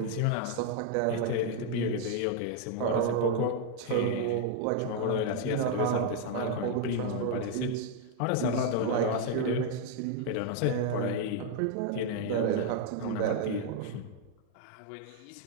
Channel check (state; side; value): different; both; correlation 0.00